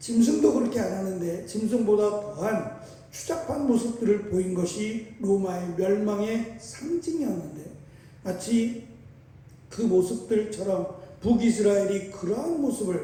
그렇게 안 하는데 짐승보다 더한 추잡한 모습들을 보인 것이 로마의 멸망의 상징이었는데, 마치 그 모습들처럼 북이스라엘이 그러한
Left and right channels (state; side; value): identical; both; correlation 1.00